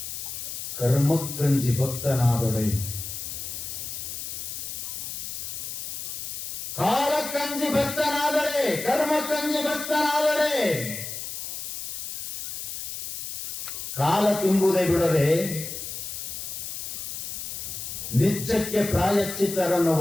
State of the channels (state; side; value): noise; left; hiss, 7 dB below the sound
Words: ಕರ್ಮಕ್ಕಂಜಿ ಭಕ್ತನಾದೊಡೆ ಕಾಲಕ್ಕಂಜಿ ಭಕ್ತನಾದರೆ ಕರ್ಮಕ್ಕಂಜಿ ಭಕ್ತನಾದರೆ ಕಾಲ ತುಂಬುವುದೇ ಬಿಡದೆ ನಿತ್ಯಕ್ಕೆ ಪ್ರಾಯಶ್ಚಿತ್ತರನ್ನು